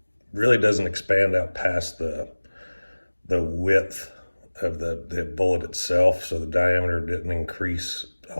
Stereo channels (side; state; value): both; inverted; correlation -1.00